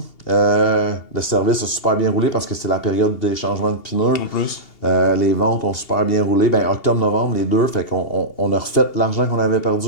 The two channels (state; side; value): late; right; 2.8 ms